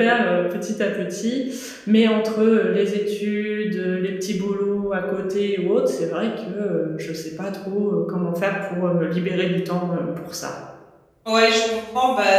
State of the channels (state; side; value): identical; both; correlation 1.00